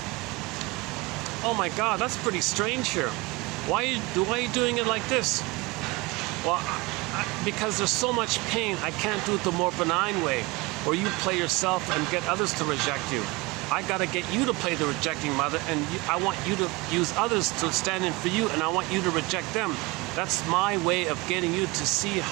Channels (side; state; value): left; quieter; 24.0 dB